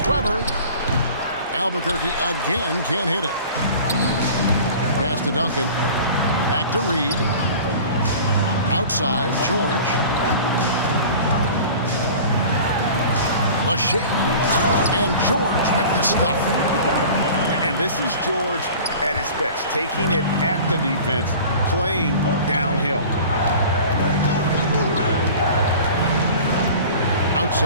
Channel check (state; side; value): inverted; both; correlation -0.41